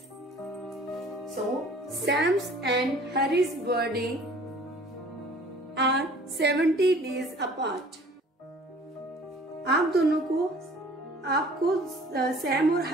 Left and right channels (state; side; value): normal; both; correlation 0.50